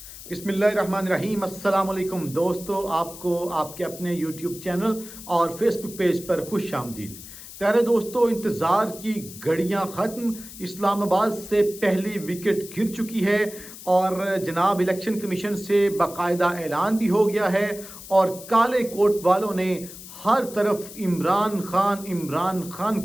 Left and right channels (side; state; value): left; noise; hiss, 15 dB below the sound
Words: बिस्मिल्लाहिर्रहमानिर्रहीम। अस्सलाम वालेकुम दोस्तों, आपको आपके अपने यूट्यूब चैनल और फेसबुक पेज पर खुश आमदीद। प्यारे दोस्तों, इंतज़ार की घड़ियां ख़त्म। इस्लामाबाद से पहली विकेट गिर चुकी है और जनाब इलेक्शन कमीशन से बाकायदा ऐलान भी हो गया है और काले कोट वालों ने हर तरफ इमरान खान